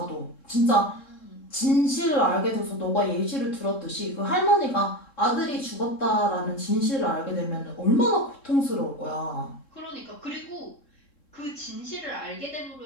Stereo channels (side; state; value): right; late; 3.7 ms